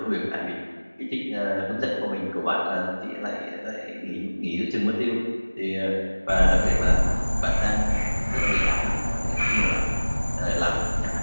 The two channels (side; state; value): both; inverted; correlation -1.00